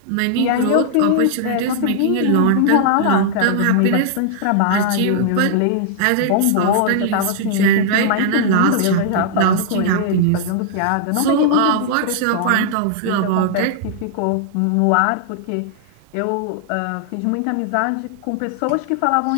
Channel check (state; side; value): different; both; correlation -0.01